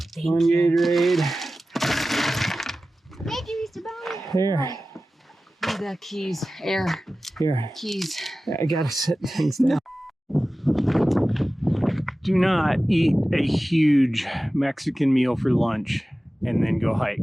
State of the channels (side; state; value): both; normal; correlation 0.96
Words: Thank One you. Gatorade. Thank you, Mr. Bowman. Here. Oh, the keys. Air. Here. Keys. I gotta set things down. Do not eat a huge Mexican meal for lunch and then go